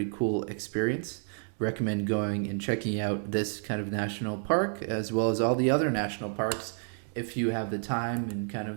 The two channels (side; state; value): left; silent; 56 dB below the other